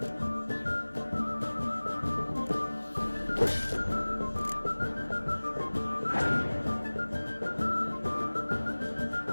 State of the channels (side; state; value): both; inverted; correlation -1.00